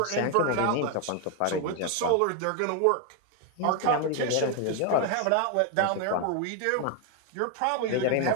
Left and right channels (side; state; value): both; different; correlation 0.01